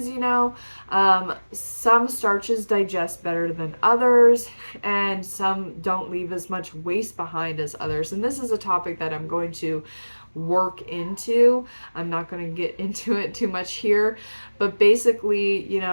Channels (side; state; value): both; inverted; correlation -1.00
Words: some starches digest better than others, and some don't leave as much waste behind as others. And this is a topic that I'm going to work into. I'm not going to get into it too much here, but basically,